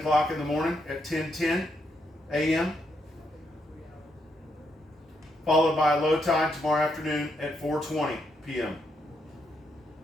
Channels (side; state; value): both; normal; correlation 0.78